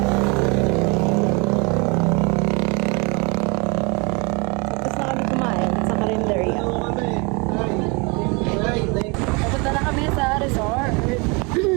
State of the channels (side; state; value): left; quieter; 29.5 dB